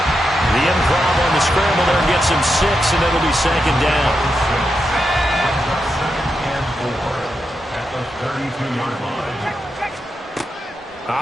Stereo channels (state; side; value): normal; both; correlation 0.86